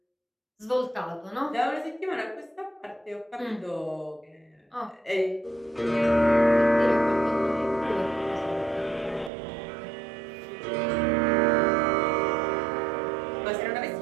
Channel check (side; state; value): left; drops out; at 9.3 s